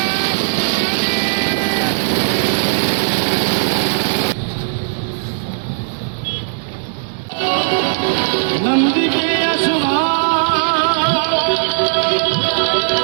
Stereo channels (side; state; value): left; silent; digital silence